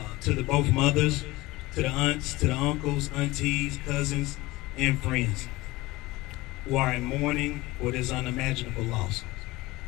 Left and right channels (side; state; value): right; quieter; 19.8 dB